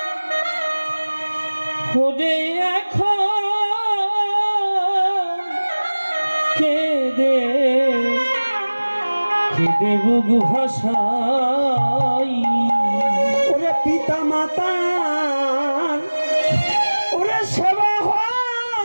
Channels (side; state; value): both; inverted; correlation -1.00